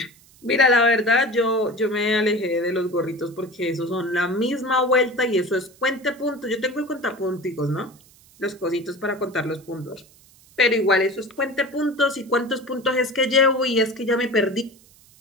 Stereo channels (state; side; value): noise; right; hiss, 27 dB below the sound